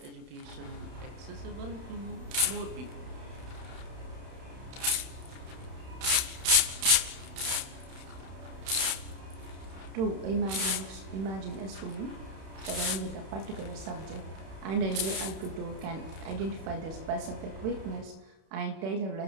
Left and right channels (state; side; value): late; left; 31 ms